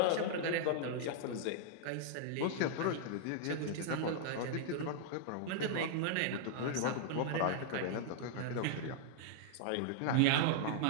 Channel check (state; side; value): different; both; correlation -0.01